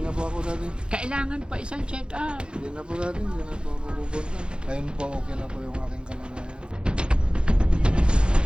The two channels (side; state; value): left; late; 0.052 ms